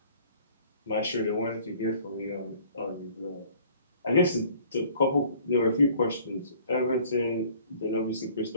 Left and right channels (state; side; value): inverted; both; correlation -0.54